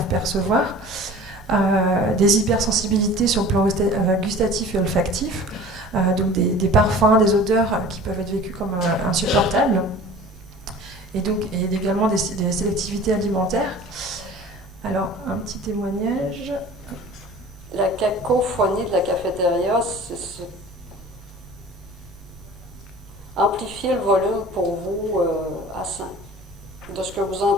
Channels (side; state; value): both; normal; correlation 0.42